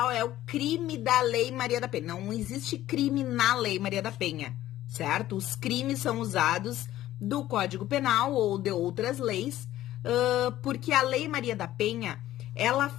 é o crime da Lei Maria da Penha. Não existe crime na Lei Maria da Penha, certo? Os crimes são usados do Código Penal ou de outras leis, porque a Lei Maria da Penha, ela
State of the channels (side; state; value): right; quieter; 14.1 dB